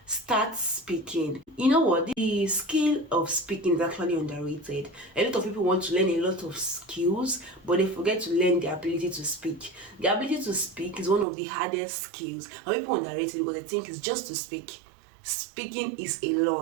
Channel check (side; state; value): left; drops out; at 11.2 s